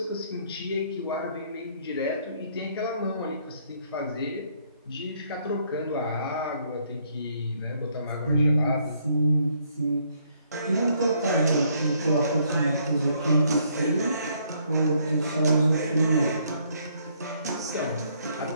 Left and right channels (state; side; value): inverted; both; correlation -0.68